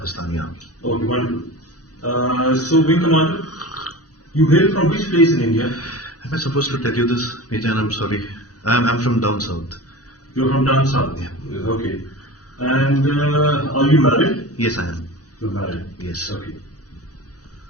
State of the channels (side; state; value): right; late; 0.67 ms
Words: army. Okay, wonderful. So, Wing Commander, you hail from which place in India? Am I supposed to tell you this, Major? I'm sorry. I'm from down south. You're from down south? Yeah. Okay. And are you married? Yes, I am. You're married? Yes. Okay.